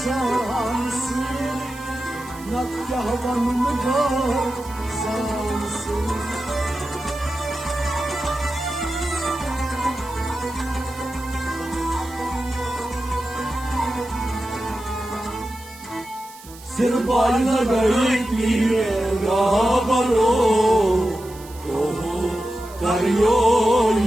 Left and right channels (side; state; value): right; noise; hiss, 20 dB below the sound